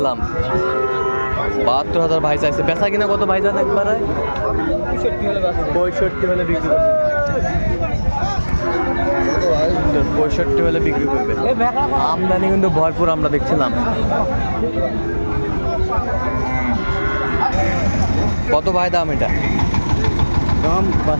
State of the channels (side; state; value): both; inverted; correlation -1.00